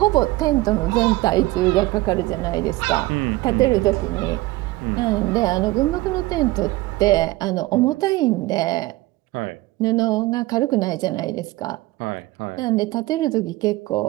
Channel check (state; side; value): quieter; left; 19.1 dB